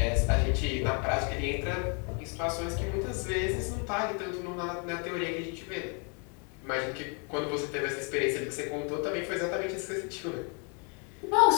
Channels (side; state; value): right; quieter; 37.3 dB